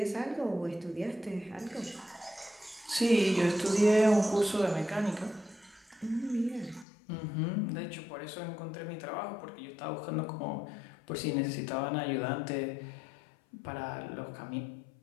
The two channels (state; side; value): drops out; right; at 6.9 s